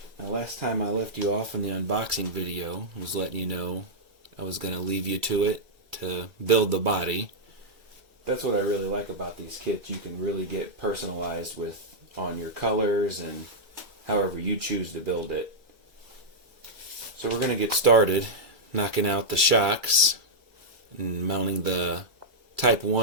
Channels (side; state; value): left; late; 2.3 ms